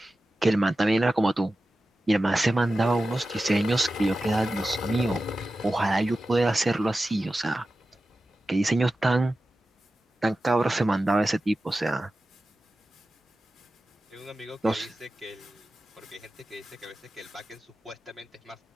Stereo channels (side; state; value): both; normal; correlation 0.94